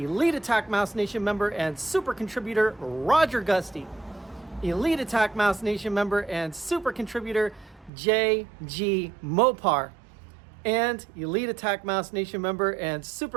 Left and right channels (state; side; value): drops out; left; at 7.9 s